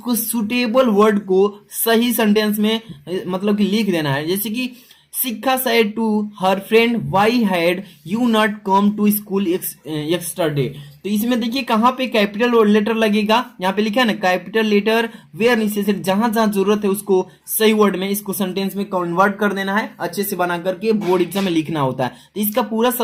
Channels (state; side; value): identical; both; correlation 1.00